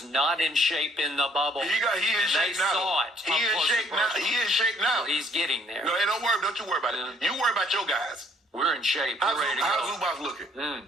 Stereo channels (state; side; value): normal; both; correlation 0.62